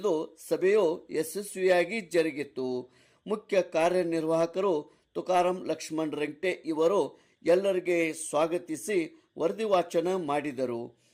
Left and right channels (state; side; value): identical; both; correlation 1.00